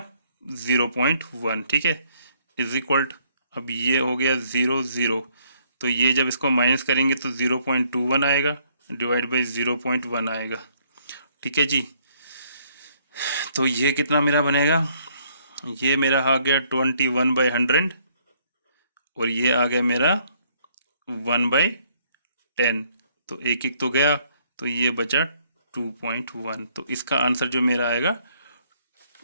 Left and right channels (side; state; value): both; inverted; correlation -0.67